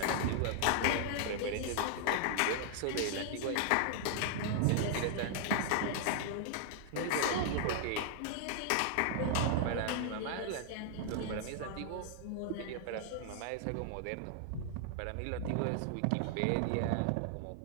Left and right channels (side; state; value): both; different; correlation 0.00